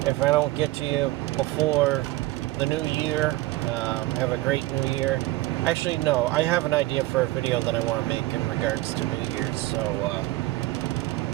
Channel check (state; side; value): quieter; left; 18.6 dB